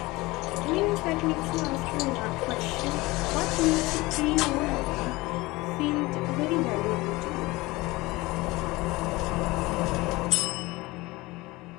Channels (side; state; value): right; quieter; 21.3 dB